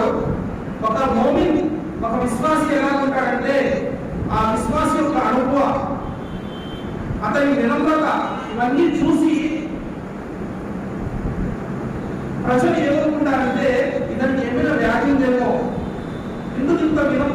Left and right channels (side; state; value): both; identical; correlation 1.00